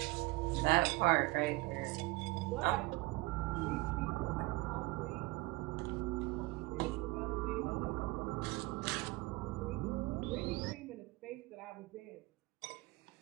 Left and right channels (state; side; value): quieter; left; 21.9 dB